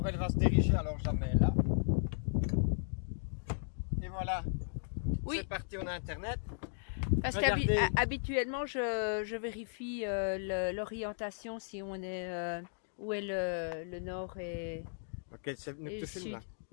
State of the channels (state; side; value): silent; right; digital silence